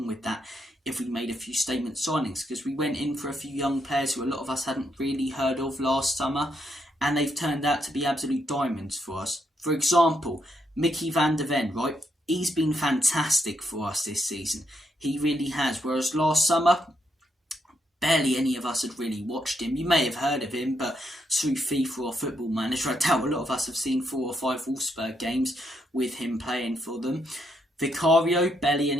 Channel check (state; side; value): normal; both; correlation 0.78